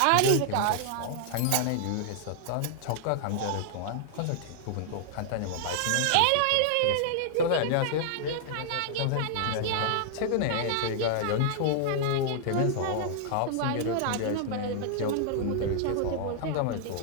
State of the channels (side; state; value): both; different; correlation -0.01